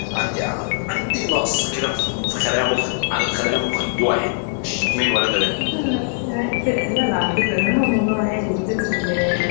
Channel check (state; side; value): silent; right; digital silence